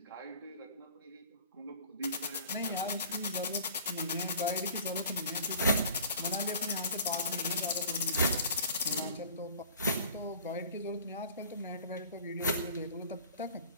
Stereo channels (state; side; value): inverted; both; correlation -0.46